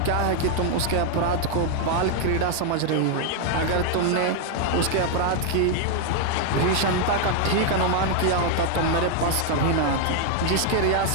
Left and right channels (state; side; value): different; both; correlation 0.00